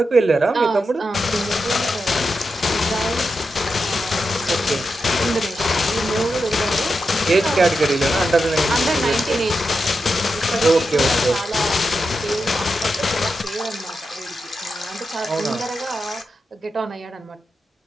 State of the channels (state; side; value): normal; both; correlation 0.88